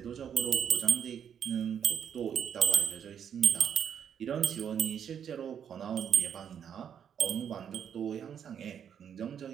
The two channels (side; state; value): left; quieter; 8.3 dB